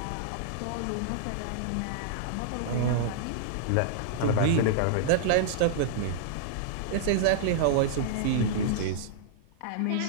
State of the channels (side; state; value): both; different; correlation -0.02